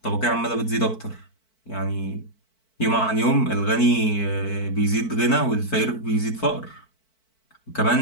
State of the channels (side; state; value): right; late; 4.5 ms